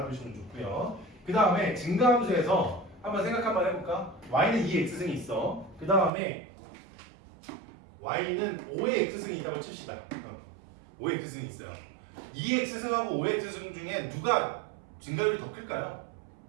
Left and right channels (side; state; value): left; drops out; at 6.1 s